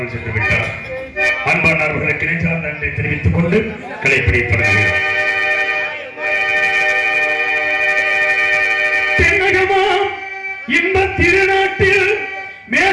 சென்று விட்டார். அன்பானவர்களுக்கு நெஞ்சார்ந்த நன்றி தெரிவித்துக் கொண்டு கலைப்பிடி தொடங்குகிறோம். தென்னகமாம் இந்த திருநாட்டில்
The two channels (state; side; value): identical; both; correlation 1.00